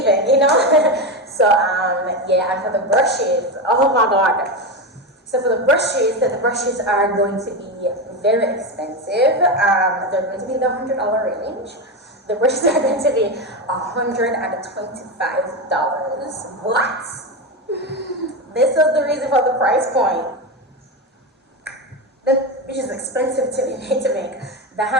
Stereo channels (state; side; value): normal; both; correlation 0.15